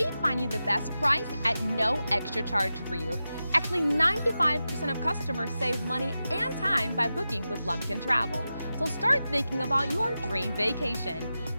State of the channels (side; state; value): both; inverted; correlation -0.92